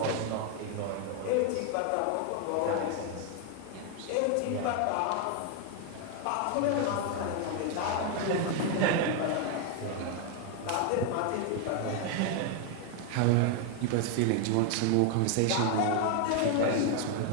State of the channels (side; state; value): both; different; correlation 0.00